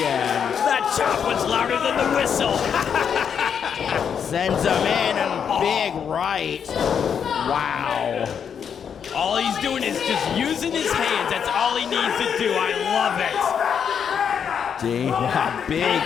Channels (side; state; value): right; quieter; 7.5 dB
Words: in. That chop was louder than the whistle. Sends him in and big right. Wow. All he's doing is just using his hands. That's all he needs to do. I love it. Big